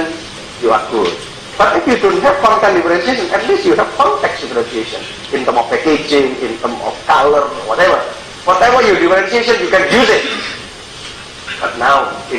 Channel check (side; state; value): both; identical; correlation 1.00